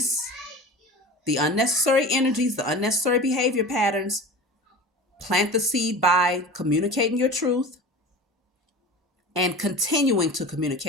the unnecessary energies, the unnecessary behavior patterns, plant the seed by communicating your truth, and continuing to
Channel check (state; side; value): normal; both; correlation 0.34